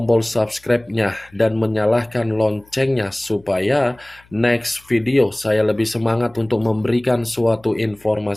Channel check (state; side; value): noise; left; hum, 29 dB below the sound